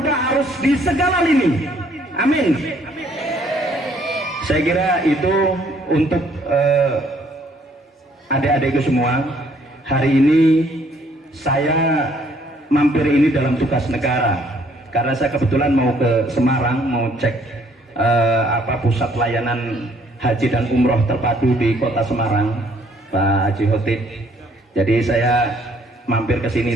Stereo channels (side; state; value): both; normal; correlation 0.64